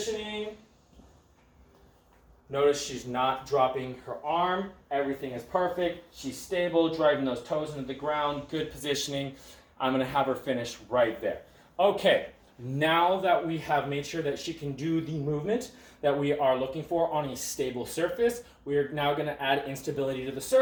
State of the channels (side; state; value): both; identical; correlation 1.00